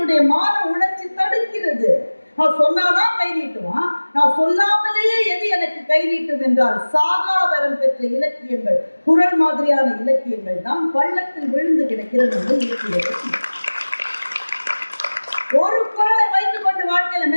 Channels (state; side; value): inverted; both; correlation -1.00